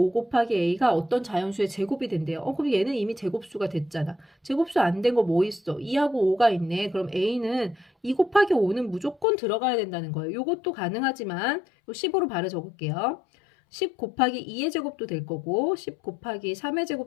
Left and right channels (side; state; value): right; drops out; at 9.2 s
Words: 곱하기 a가 어떤 자연수의 제곱이 된대요. 그럼 얘는 이미 제곱수가 됐잖아. 제곱수 안 된 거 뭐 있어? 2하고 5가 있네. 그럼 a는 2 곱하기 5는 무조건 들어가야 된다는 거예요. 요것도 가능하지만 15로 바로 적을게요. 10 곱하기 2의 제곱도 될 거고 10 곱하기 3의